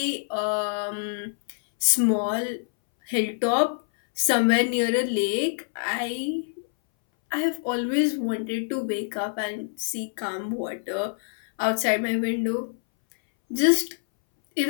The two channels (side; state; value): right; silent; 61 dB below the other